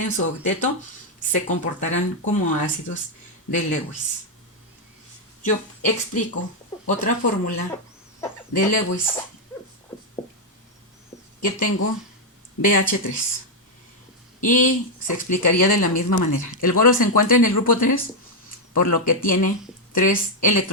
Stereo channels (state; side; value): normal; both; correlation 0.00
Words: su octeto, se comportarán como ácidos de Lewis. Yo explico otra fórmula de Lewis que tengo BH3 y se explicaría de la misma manera. El boro se encuentra en el grupo 3, por lo que tiene 3